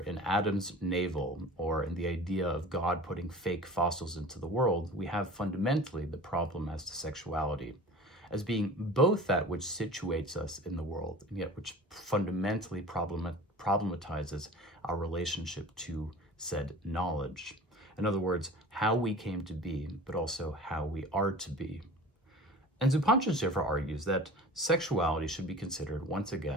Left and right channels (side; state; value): both; normal; correlation 0.40